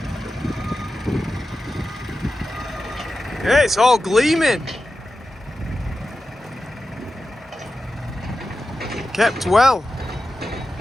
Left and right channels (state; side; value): normal; both; correlation 0.92